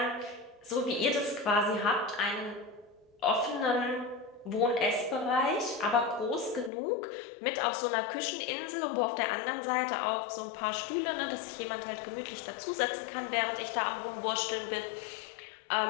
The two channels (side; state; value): right; drops out; at 6.7 s